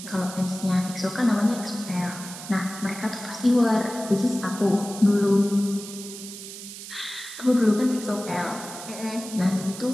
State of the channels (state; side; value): noise; right; hiss, 12 dB below the sound